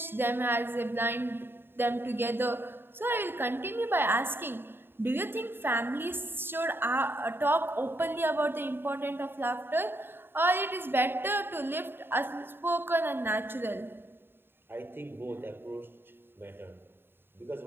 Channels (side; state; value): left; late; 0.10 ms